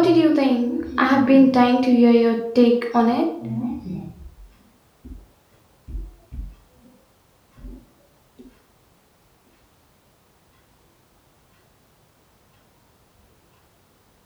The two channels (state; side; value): identical; both; correlation 1.00